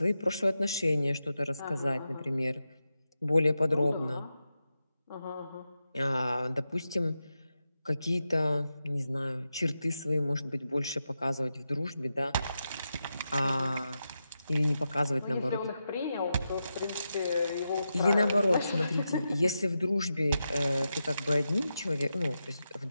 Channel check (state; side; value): inverted; both; correlation -0.88